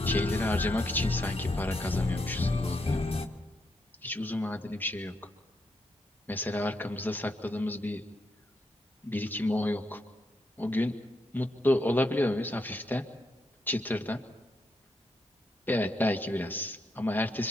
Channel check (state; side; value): normal; both; correlation 0.80